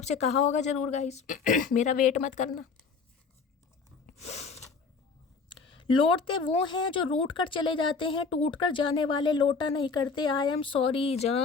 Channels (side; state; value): right; quieter; 4.9 dB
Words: कहा होगा जरूर गाइस मेरा वेट मत करना। लौटते वो हैं जो रूठ कर चले जाते हैं, टूट कर जाने वाले लौटा नहीं करते। आई एम सॉरी